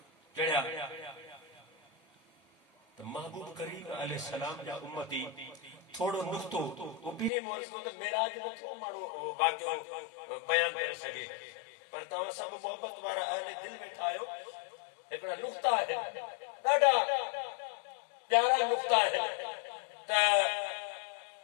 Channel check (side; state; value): right; drops out; at 7.3 s